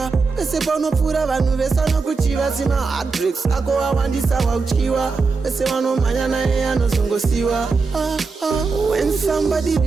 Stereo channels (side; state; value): left; quieter; 4.4 dB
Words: wese paunopfuura vanhu vese vanokuchiva. Sima heartbreaks ako awandisa wauchiwa, wese vanomhanya naye anozongosiwa. When somebody